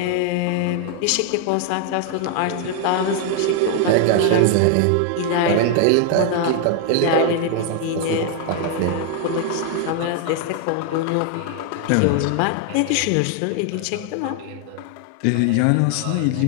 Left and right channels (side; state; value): both; different; correlation 0.00